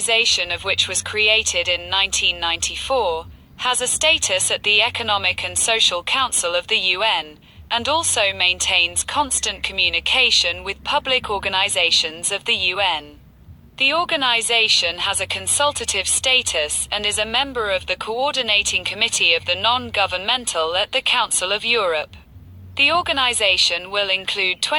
of which was created in 1994, has a status at the Economic and Social Council of the UN, and also maintains constant communication with public organizations of the UN. The organization has a consultative status and is a member of the Coordinating Committee of the Non-Governmental at the Council of Europe. The organization will include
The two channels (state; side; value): identical; both; correlation 1.00